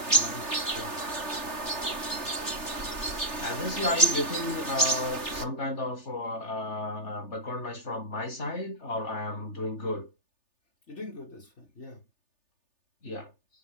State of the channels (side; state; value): right; late; 3.3 ms